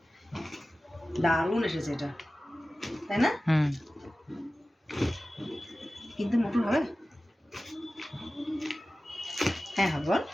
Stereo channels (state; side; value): normal; both; correlation 0.96